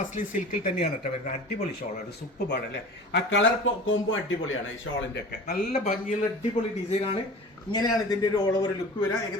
സിൽക്കിൽ തന്നെയാണ് കേട്ടോ വരുന്നത്. അടിപൊളി ഷോളാണ്. സൂപ്പറാണ് അല്ലേ. ആ കളർ കോംബോ അടിപൊളിയാണ് ഈ ഷോളിൻ്റെ ഒക്കെ. നല്ല ഭംഗിയുള്ള അടിപൊളി ഡിസൈനാണ്. ഇങ്ങനെയാണ് ഇതിൻ്റെ ഒരു ഓൾ ഓവർ ലുക്ക് വരിക.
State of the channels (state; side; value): normal; both; correlation 0.38